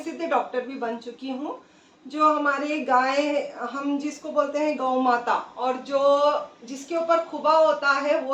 डॉक्टर भी बन चुकी हूँ। जो हमारे गाय, हम जिसको बोलते हैं गौ माता, और जो जिसके ऊपर खुबा होता है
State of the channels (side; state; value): both; identical; correlation 1.00